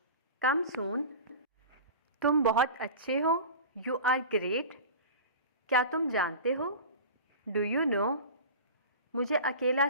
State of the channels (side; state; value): both; inverted; correlation -0.33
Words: कम सून। तुम बहुत अच्छे हो, यू आर ग्रेट। क्या तुम जानते हो, डू यू नो। मुझे अकेला